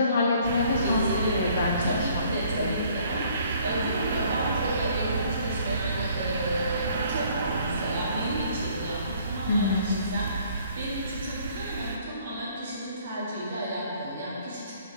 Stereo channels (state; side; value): inverted; both; correlation -0.60